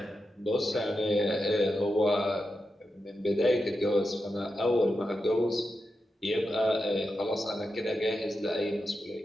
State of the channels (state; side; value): normal; both; correlation 0.88